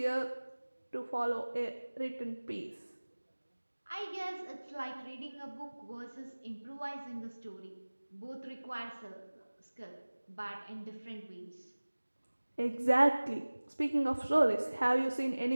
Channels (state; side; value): inverted; both; correlation -1.00